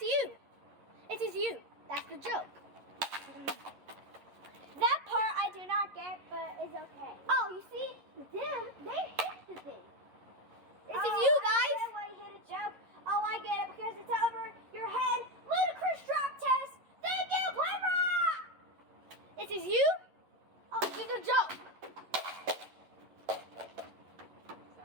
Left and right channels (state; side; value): late; left; 11 ms